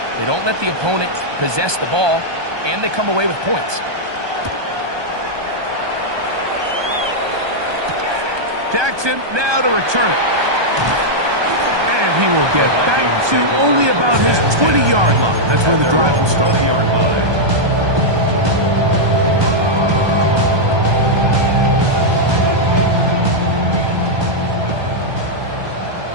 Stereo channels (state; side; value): late; left; 1.2 ms